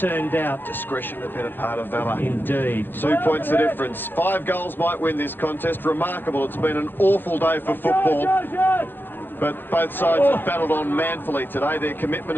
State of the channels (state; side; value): late; right; 0.098 ms